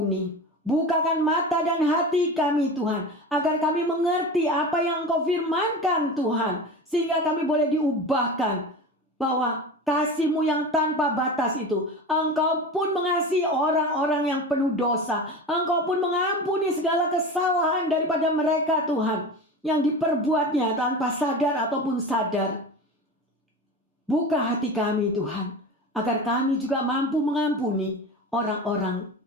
Bukakan mata dan hati kami Tuhan. Agar kami mengerti apa yang Engkau firmankan Tuhan. Sehingga kami boleh diubahkan. Bahwa kasih-Mu yang tanpa batas itu, Engkau pun mengasihi orang-orang yang penuh dosa. Engkau pun mengampuni segala kesalahan daripada mereka Tuhan, yang diperbuatnya tanpa sadar ataupun sadar. Buka hati kami Tuhan, agar kami juga mampu mengampuni orang-orang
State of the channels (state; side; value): normal; both; correlation 0.30